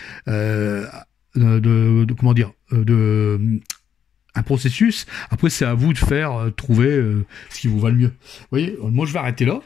Comment dire, un processus. Après, c'est à vous de faire trouver ce qui vous va le mieux. Vous voyez, moi, je vais arrêter là.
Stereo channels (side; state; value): right; quieter; 8.5 dB